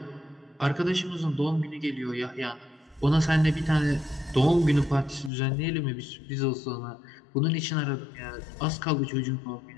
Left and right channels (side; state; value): right; drops out; at 5.3 s